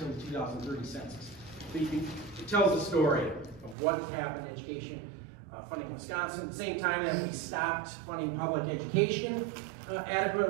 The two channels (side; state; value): left; drops out; at 3.8 s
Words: the 2030 census. But it tells the story of what's happened in education funding in Wisconsin. At the same time that we stopped funding public education